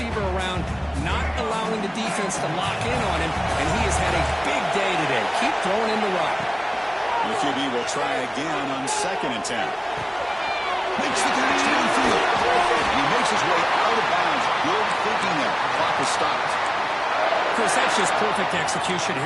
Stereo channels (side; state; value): both; identical; correlation 1.00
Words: around, not allowing the defense to lock in on him, and he has had a big day today. Keep throwing in the rock. The QB will try again on 2nd and 10. Makes the catch downfield. And he makes his way out of bounds. Good thinking there. Clock is stopped. Chris, that's just perfect execution